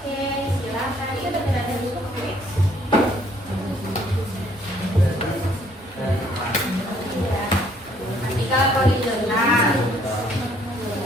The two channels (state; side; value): normal; both; correlation 0.63